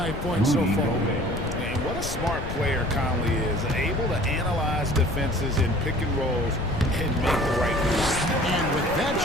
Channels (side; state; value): left; noise; rumble, 6 dB below the sound